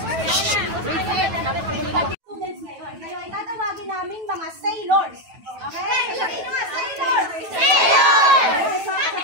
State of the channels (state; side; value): late; left; 9.1 ms